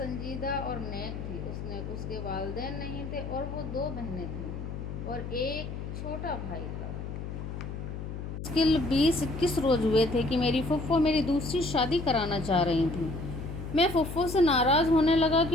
اور نیک تھی۔ اس کے والدین نہیں تھے اور وہ 2 بہنیں تھیں اور ایک چھوٹا بھائی تھا۔ مشکل 20-21 روز ہوئے تھے کہ میری پھپھو میری دوسری شادی کرانا چاہ رہی تھیں۔ میں پھپھو سے ناراض ہونے لگا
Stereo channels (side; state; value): left; noise; hum, 7 dB below the sound